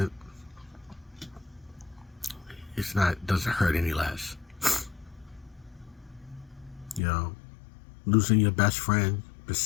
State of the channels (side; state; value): right; drops out; at 7.0 s